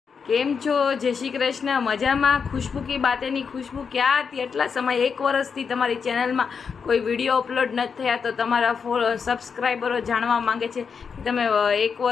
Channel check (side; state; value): right; quieter; 6.0 dB